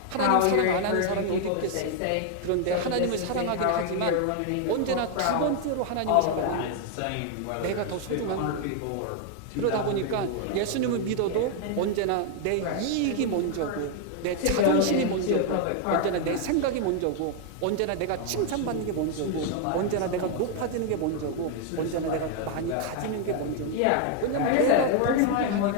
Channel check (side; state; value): both; different; correlation 0.00